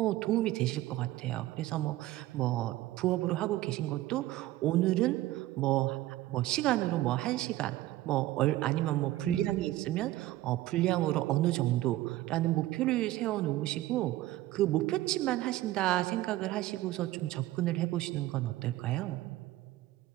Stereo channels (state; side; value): quieter; left; 16.1 dB